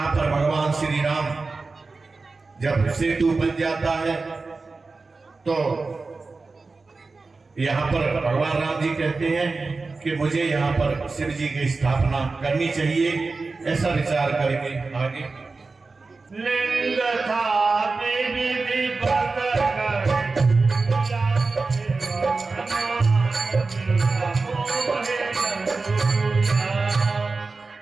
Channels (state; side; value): quieter; left; 3.9 dB